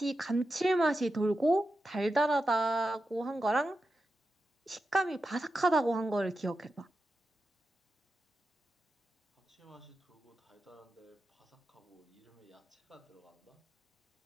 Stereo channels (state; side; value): normal; both; correlation 0.90